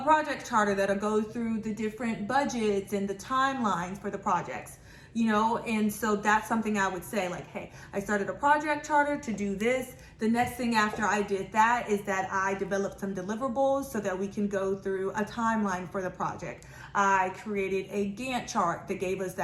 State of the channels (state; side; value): identical; both; correlation 1.00